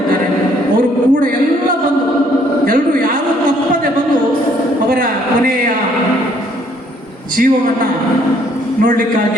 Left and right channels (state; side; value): normal; both; correlation 0.64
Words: ಅವರು ಕೂಡ ಎಲ್ಲ ಬಂದು ಎಲ್ಲರೂ ಯಾರೂ ತಪ್ಪದೆ ಬಂದು ಅವರ ಕೊನೆಯ ಜೀವವನ್ನು